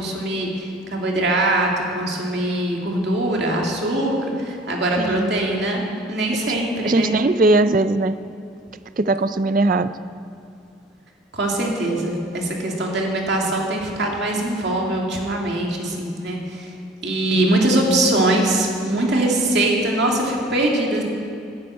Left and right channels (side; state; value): both; normal; correlation 0.48